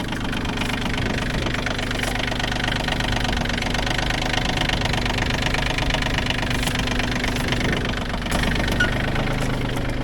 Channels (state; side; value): identical; both; correlation 1.00